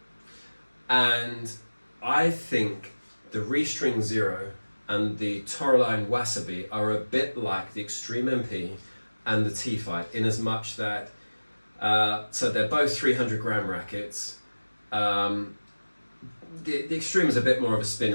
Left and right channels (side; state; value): both; inverted; correlation -1.00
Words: And I think the Restring Zero and the Toroline Wasabi are a bit like the Extreme MP and the T-Fight, in as much that, so they're both 300 gram rackets. The Extreme is a bit more of a spin